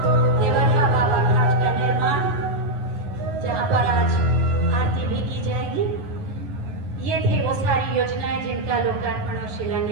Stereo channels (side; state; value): left; late; 10 ms